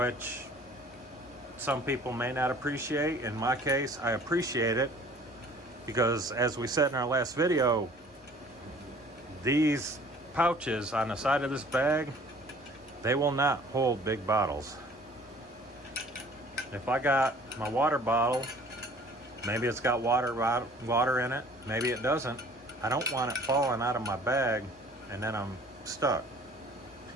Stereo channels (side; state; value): both; normal; correlation 0.51